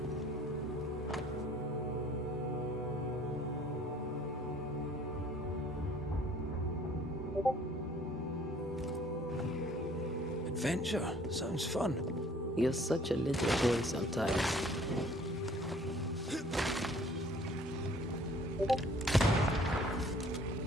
Adventure. Sounds fun. You're such a little boy sometimes.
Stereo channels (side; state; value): both; normal; correlation 0.55